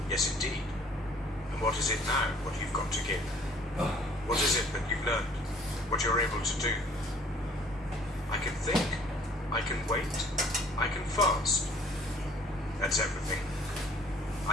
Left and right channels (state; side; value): normal; both; correlation 0.55